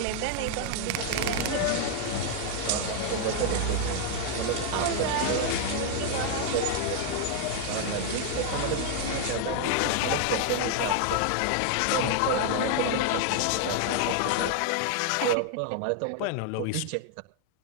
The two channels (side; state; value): both; different; correlation 0.00